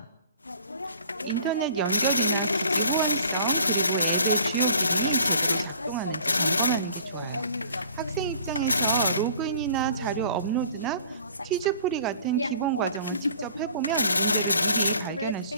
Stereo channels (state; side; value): inverted; both; correlation -0.50